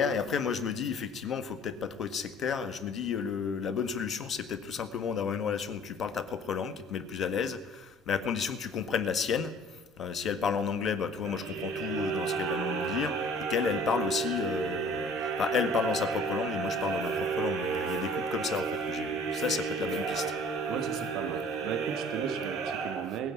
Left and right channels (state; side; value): normal; both; correlation 0.51